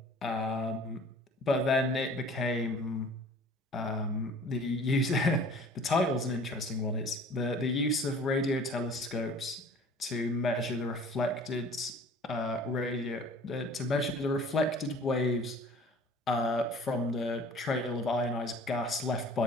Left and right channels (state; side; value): normal; both; correlation 0.48